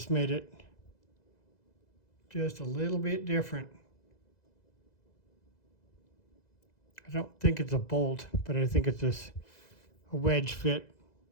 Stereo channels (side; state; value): right; late; 2.0 ms